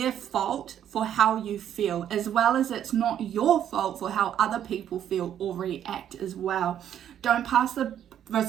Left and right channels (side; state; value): left; quieter; 10.1 dB